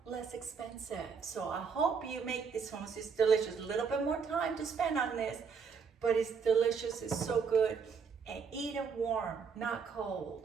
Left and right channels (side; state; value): left; quieter; 5.9 dB